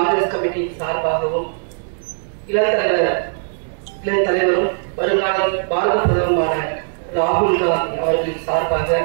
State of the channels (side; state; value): left; silent; 66 dB below the other